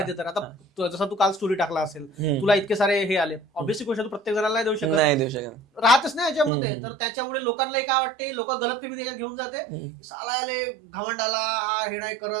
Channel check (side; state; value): left; drops out; at 6.5 s